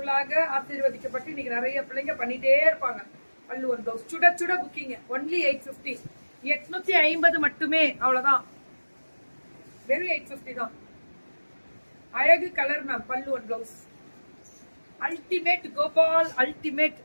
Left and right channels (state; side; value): inverted; both; correlation -1.00